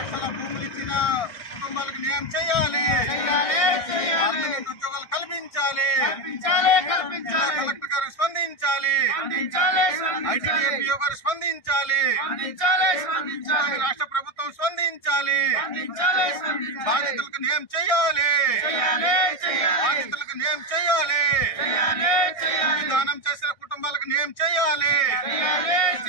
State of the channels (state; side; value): late; right; 1.6 ms